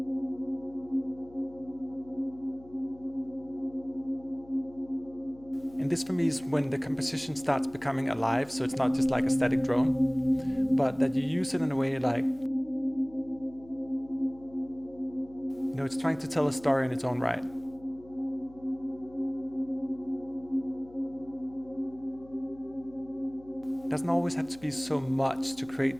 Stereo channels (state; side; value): noise; left; hum, 22 dB below the sound